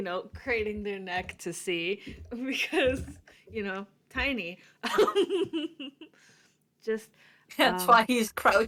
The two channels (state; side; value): identical; both; correlation 1.00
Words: craning their neck to see, because, tiny. Just That's why he's